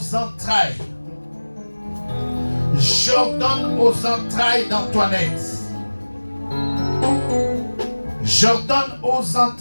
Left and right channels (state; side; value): inverted; both; correlation -1.00